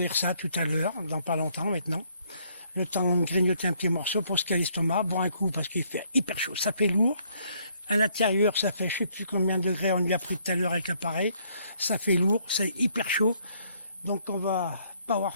ça tout à l'heure, dans pas longtemps maintenant. Le temps de grignoter un petit morceau pour se caler l'estomac, boire un coup parce qu'il fait hyper chaud, ça fait lourd. À l'intérieur, ça fait je ne sais plus combien de degrés on lui a pris tout à l'heure avec l'appareil. Ça fait lourd, c'est hyper chaud. Donc on va pas avoir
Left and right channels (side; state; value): both; inverted; correlation -0.68